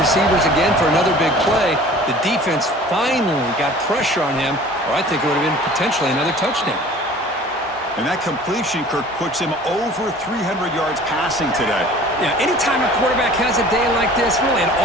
again for another big play. The defense finally got pressure on him, or I think it would have been potentially another touchdown. And that completion, Kirk, puts him over 300 yards passing today. Yeah, anytime a quarterback has a day like this, really it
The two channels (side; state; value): both; normal; correlation 0.46